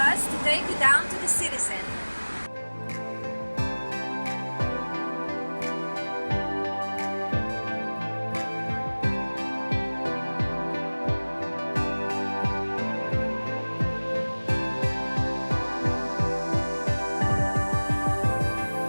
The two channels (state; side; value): inverted; both; correlation -1.00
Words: to take you down to the city center.